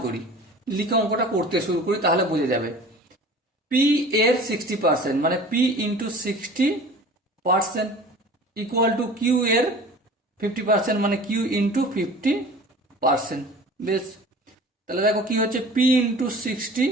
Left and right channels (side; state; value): both; normal; correlation 0.42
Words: করি, লিখে অঙ্কটা করতে শুরু করি, তাহলে বুঝে যাবে। পি এর 60% মানে P into 60% equal to Q এর 50% মানে কিউ ইন্টু 50%। বেশ, তাহলে দেখো কি হচ্ছে, P into